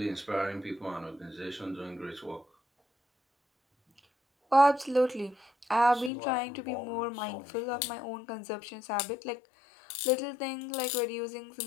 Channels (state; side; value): drops out; right; at 6.1 s